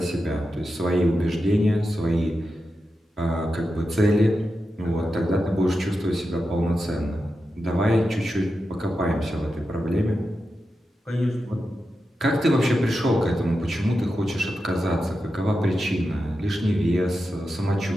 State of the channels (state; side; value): normal; both; correlation 0.90